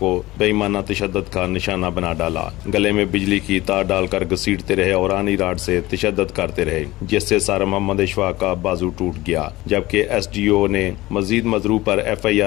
बेईमाना तशद्दद का निशाना बना डाला। गले में बिजली की तार डालकर घसीटते रहे और आनी राड से तशद्दद करते रहे, जिससे सारा मोहम्मद इशफाक का बाजू टूट गया, जबकि SDO ने मजीद मजरूब पर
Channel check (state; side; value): quieter; right; 18.6 dB